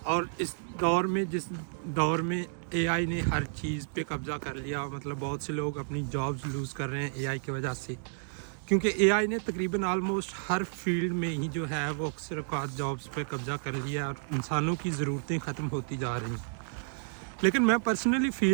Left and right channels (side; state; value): left; silent; digital silence